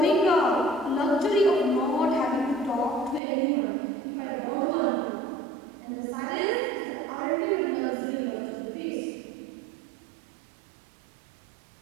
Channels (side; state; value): left; drops out; at 3.2 s